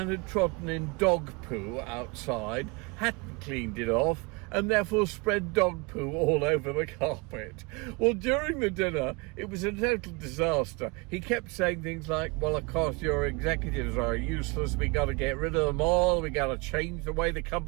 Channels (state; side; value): quieter; left; 28.7 dB